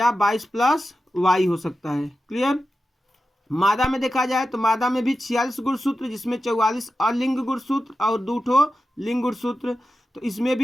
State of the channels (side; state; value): both; normal; correlation 0.92